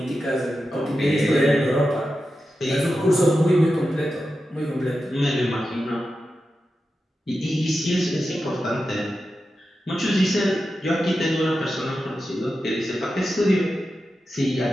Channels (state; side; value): normal; both; correlation 0.91